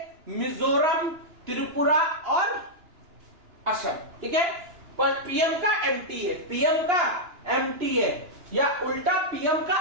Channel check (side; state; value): left; late; 2.9 ms